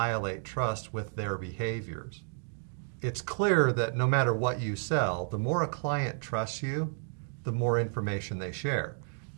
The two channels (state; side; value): silent; left; digital silence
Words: trust with their behaviors. It's clear that no matter what you sell, the more a client trusts you, the more information they share.